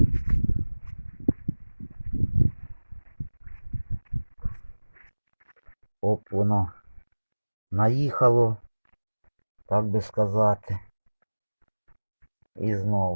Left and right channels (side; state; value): both; inverted; correlation -1.00